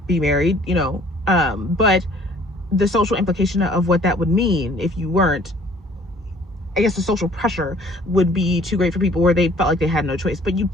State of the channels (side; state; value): both; normal; correlation 0.55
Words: be married, but the social implication of what that would mean if you weren't, I guess the social pressure would be too great for people, where they felt like they had no choice, but you